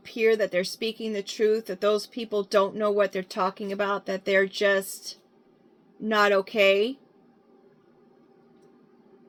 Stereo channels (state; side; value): identical; both; correlation 1.00